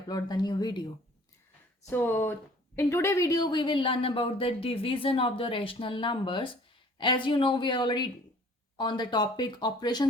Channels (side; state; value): both; normal; correlation 0.52